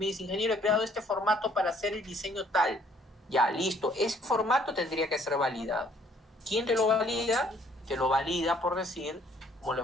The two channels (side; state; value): both; normal; correlation 0.62